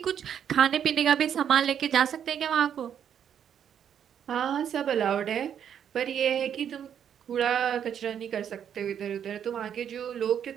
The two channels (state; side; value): quieter; left; 8.8 dB